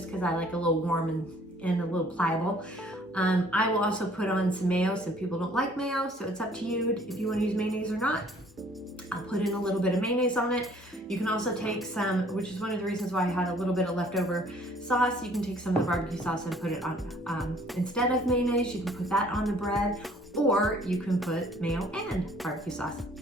because I like a little warm and a little pliable. I will also put on some mayo. Some people don't like mayo, so it's up to you if you want to use mayonnaise or not. I'll put in a little bit of mayonnaise on it. You can also take some, which is one of the reasons why I had a little bit of leftover sauce. You can take some of the barbecue sauce and put it on, instead of mayonnaise, you can put that on the bread, or you can put mayo and barbecue sauce.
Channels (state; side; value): normal; both; correlation 0.57